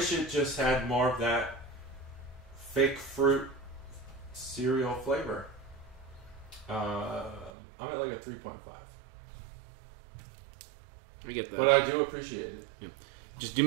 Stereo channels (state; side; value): drops out; left; at 7.5 s